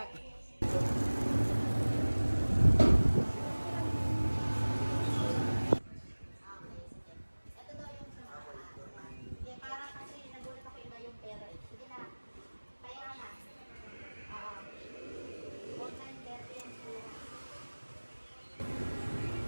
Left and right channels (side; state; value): both; inverted; correlation -1.00